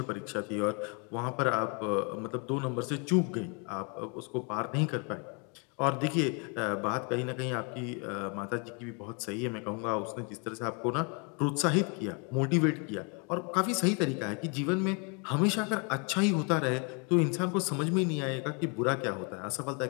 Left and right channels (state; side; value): quieter; right; 34.9 dB